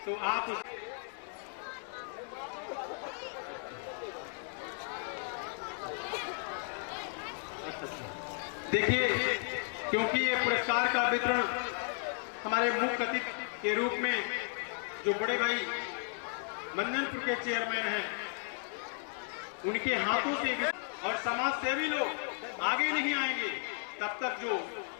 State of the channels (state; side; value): silent; right; 55 dB below the other